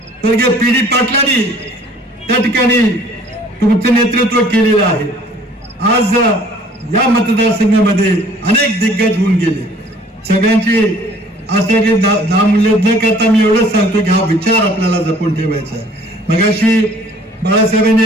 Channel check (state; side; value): normal; both; correlation 0.55